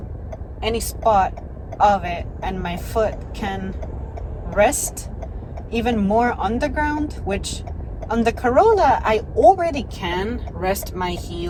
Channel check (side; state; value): both; identical; correlation 1.00